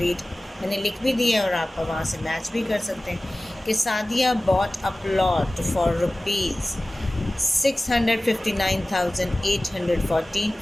मैंने लिख भी दिया है और आप वहाँ से मैच भी कर सकते हैं कि Sadia bought a plot for rupees 659,814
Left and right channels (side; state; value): both; normal; correlation 0.97